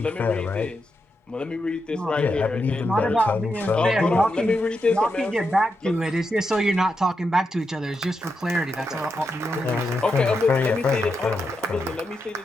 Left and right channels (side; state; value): both; normal; correlation 0.85